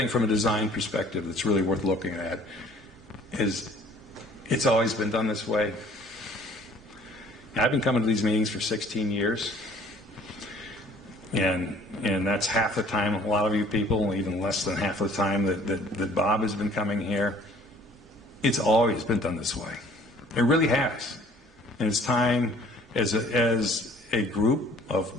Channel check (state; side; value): normal; both; correlation 0.53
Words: from a design perspective that's really worth looking at is it's always been done this way. I've been coming to these meetings for 16 years, and that's half the time, a lot of you people, even less than half the time that Bob has been coming here. It's always been done this way. It really has. And it's time as a group